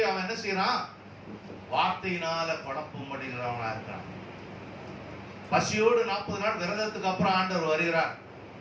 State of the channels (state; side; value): identical; both; correlation 1.00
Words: அவன் என்ன செய்யறான்? வார்த்தையினால குழப்பம் அடைகிறவனா இருக்கிறான். பசியோடு 40 நாள் விரதத்துக்கு அப்புறம் ஆண்டவர் வருகிறார்.